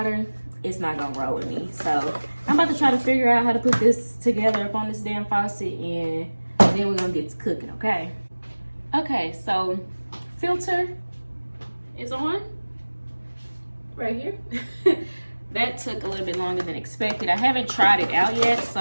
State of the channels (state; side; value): inverted; both; correlation -1.00